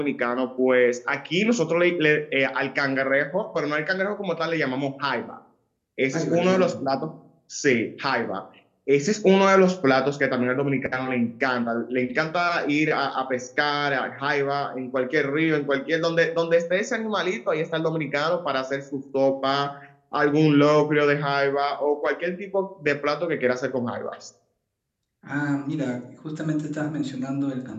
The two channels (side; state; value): both; identical; correlation 1.00